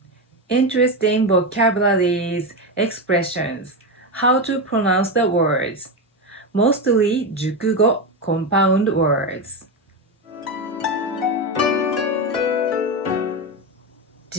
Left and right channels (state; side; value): normal; both; correlation 0.14